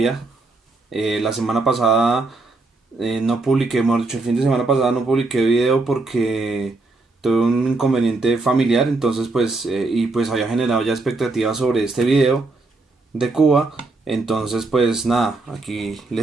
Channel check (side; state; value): left; quieter; 3.4 dB